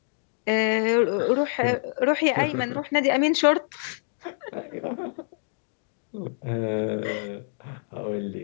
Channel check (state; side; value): silent; right; digital silence